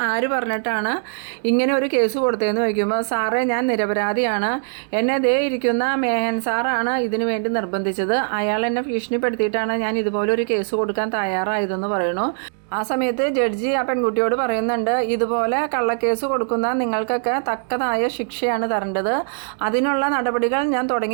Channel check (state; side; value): silent; left; digital silence